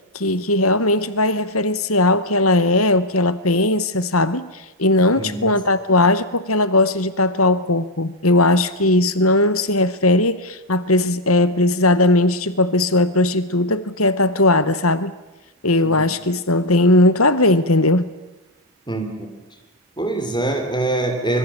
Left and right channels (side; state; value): both; normal; correlation 0.03